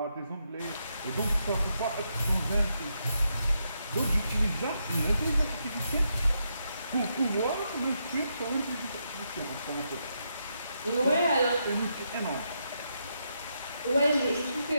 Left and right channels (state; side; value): inverted; both; correlation -0.81